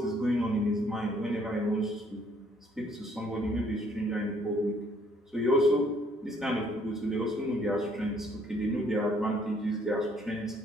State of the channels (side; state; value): both; normal; correlation 0.64